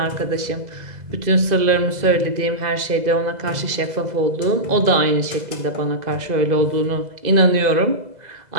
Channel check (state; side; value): late; left; 2.0 ms